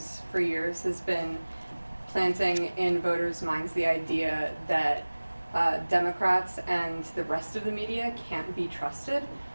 for years has been planting in voters' minds the idea that Democrats and the rest of the media can't be trusted.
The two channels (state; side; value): inverted; both; correlation -1.00